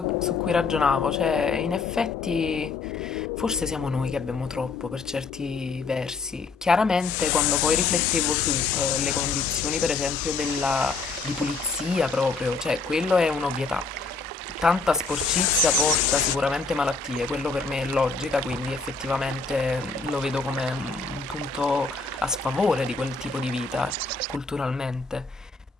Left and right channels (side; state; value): right; quieter; 4.2 dB